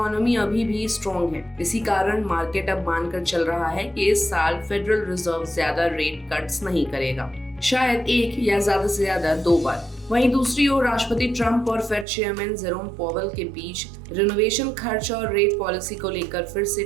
अभी भी स्ट्रॉन्ग है। इसी कारण मार्केट अब मानकर चल रहा है कि इस साल फेडरल रिजर्व ज्यादा रेट कट्स नहीं करेगा, शायद एक या ज्यादा से ज्यादा 2 बार। वहीं दूसरी ओर राष्ट्रपति ट्रंप और फेड चेयरमैन जेरोम पावेल के बीच रिनोवेशन खर्च और रेट पॉलिसी को लेकर फिर से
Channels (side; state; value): left; drops out; at 12.1 s